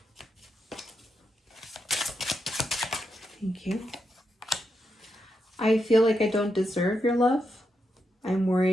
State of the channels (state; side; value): normal; both; correlation 0.84